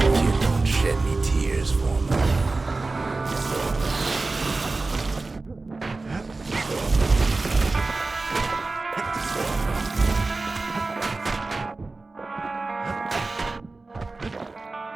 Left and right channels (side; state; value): left; quieter; 3.5 dB